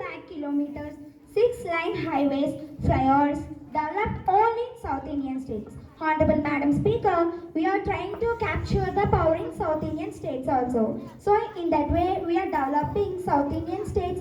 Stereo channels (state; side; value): identical; both; correlation 1.00